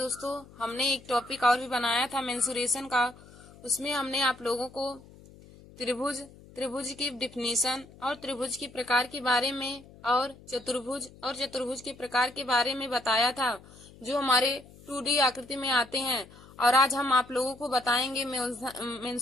हमने एक टॉपिक और भी बनाया था मेंसुरेशन का। उसमें हमने आप लोगों को त्रिभुज की डिफिनीशन और त्रिभुज के प्रकार के बारे में और चतुर्भुज के प्रकार के बारे में बताया था, जो हमारे 2D आकृति में आते हैं। और आज हम आप लोगों को बताएंगे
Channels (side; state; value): left; noise; hum, 22 dB below the sound